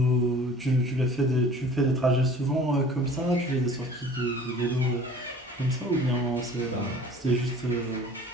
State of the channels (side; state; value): both; normal; correlation 0.46